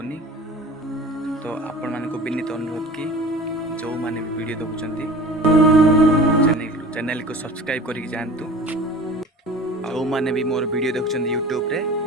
तो आपण मान को विनीत अनुरोध कि जो माने भी वीडियो देखुंती चैनल को सब्सक्राइब करके जातु जो माने भी मोर वीडियो देखुंती यूट्यूब रे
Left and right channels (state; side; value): normal; both; correlation 0.39